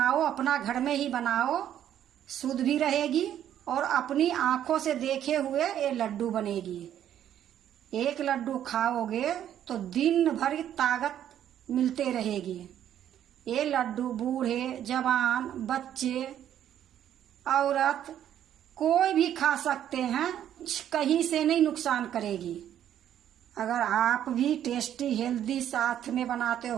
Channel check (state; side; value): quieter; left; 10.6 dB